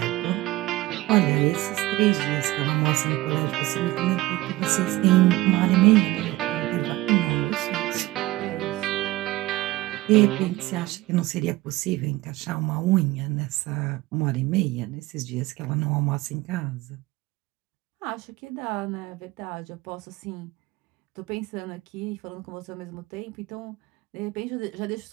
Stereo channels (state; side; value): quieter; left; 18.4 dB